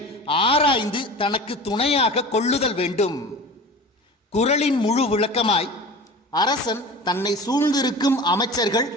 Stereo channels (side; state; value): both; normal; correlation 0.36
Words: ஆராய்ந்து தனக்கு துணையாக கொள்ளுதல் வேண்டும். குறளின் முழு விளக்கமாய்: அரசன் தன்னை சூழ்ந்திருக்கும் அமைச்சர்கள்,